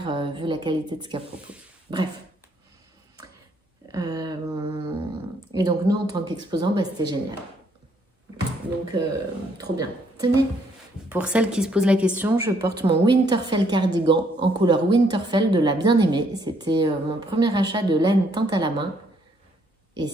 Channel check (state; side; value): normal; both; correlation 0.69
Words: vu la qualité de ce qu'elle propose. Bref. Et donc nous, en tant qu'exposants, bah, c'était génial. Donc, trop bien. Tenez, pour celles qui se posent la question, je porte mon Winterfell cardigan en couleur Winterfell de la bien-aimée. C'était mon premier achat de laine teinte à la main. Et